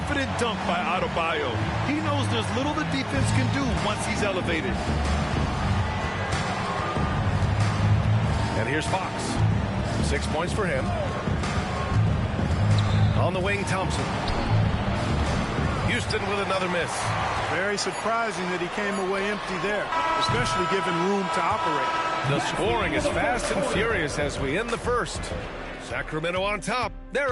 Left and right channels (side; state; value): both; identical; correlation 1.00